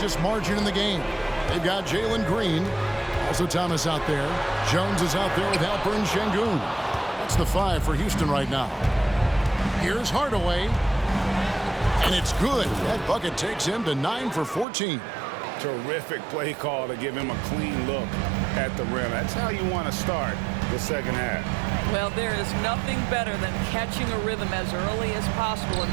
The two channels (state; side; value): drops out; left; at 14.7 s